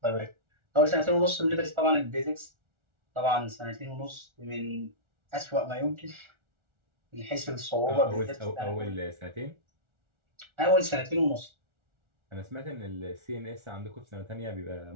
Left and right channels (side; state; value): left; late; 1.4 ms